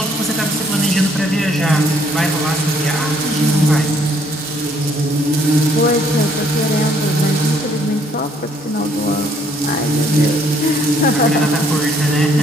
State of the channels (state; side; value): normal; both; correlation 0.66